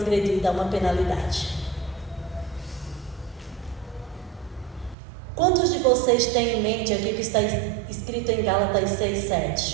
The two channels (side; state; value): left; drops out; at 5.0 s